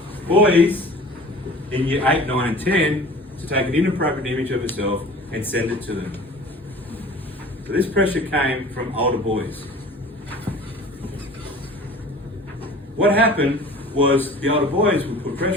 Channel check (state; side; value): normal; both; correlation 0.43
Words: boys in year 8, 9 and 10 to take an inappropriate image of herself and send it to them. So this pressure came from older boys. What happened was the older boys would put